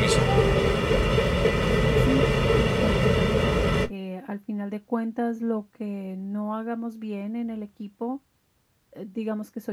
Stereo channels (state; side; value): identical; both; correlation 1.00